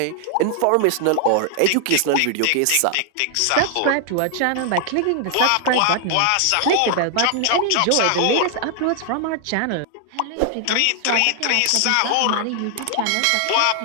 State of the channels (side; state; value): both; different; correlation 0.00